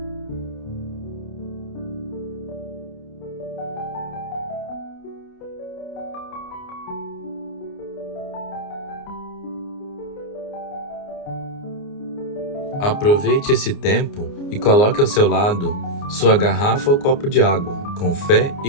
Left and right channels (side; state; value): right; late; 29 ms